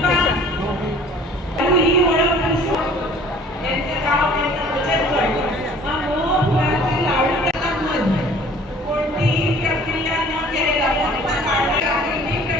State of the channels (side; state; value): both; normal; correlation 0.51